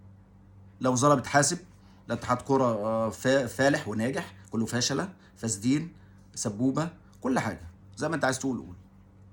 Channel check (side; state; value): both; identical; correlation 1.00